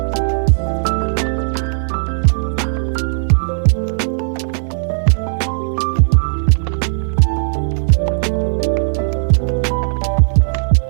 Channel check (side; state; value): left; silent; 68 dB below the other